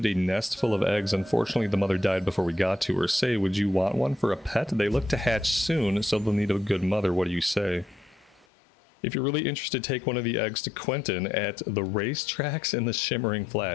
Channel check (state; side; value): drops out; right; at 8.5 s